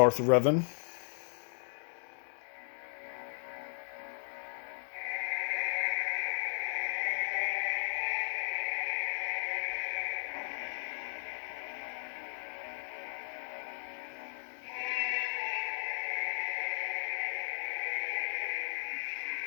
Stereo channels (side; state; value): right; silent; digital silence